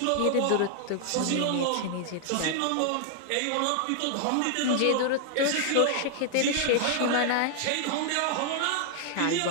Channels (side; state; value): both; different; correlation -0.01